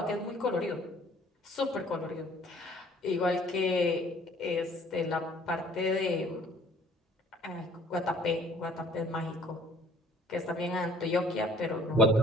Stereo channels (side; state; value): both; normal; correlation 0.55